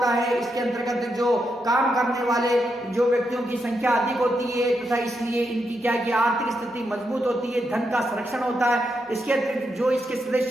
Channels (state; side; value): normal; both; correlation 0.83